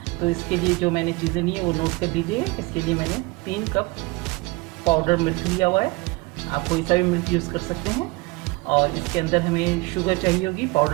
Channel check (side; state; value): left; quieter; 24.2 dB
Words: तो इसके लिए जो मैंने चीज़ें ली हैं वो नोट कर लीजिए। इसके लिए मैंने 3 कप पाउडर मिल्क लिया हुआ है। आप कोई सा भी मिल्क यूज़ कर सकते हैं। और इसके अंदर हमें शुगर चाहिए होगी,